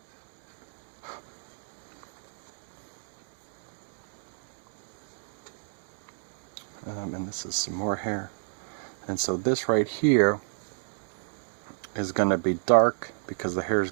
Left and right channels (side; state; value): left; silent; digital silence